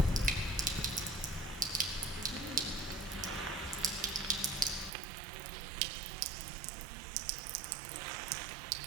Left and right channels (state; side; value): drops out; left; at 4.9 s